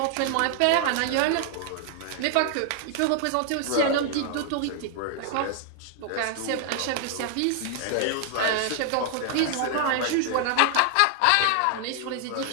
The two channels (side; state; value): both; different; correlation 0.00